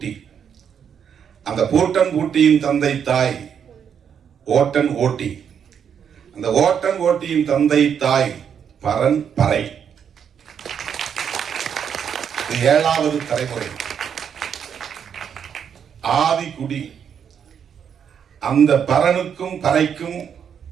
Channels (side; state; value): left; quieter; 7.8 dB